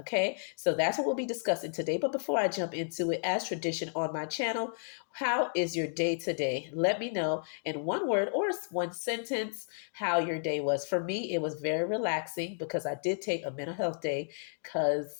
so that's what we'll be discussing today. But before I jump into it, as tradition on my channel, how is your day today? Let me know in one word or one sentence how your day was. For me, it was very relaxing because I did take a mental health day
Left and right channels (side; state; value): right; silent; digital silence